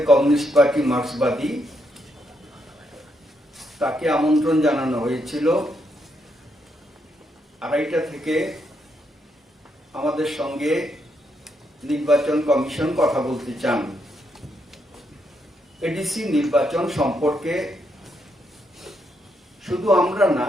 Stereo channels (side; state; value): both; normal; correlation 0.78